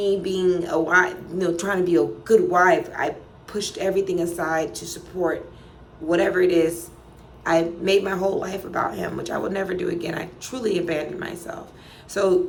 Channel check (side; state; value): both; identical; correlation 1.00